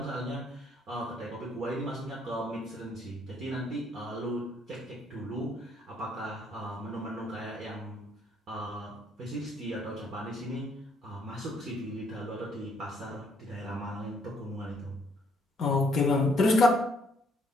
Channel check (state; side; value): normal; both; correlation 0.68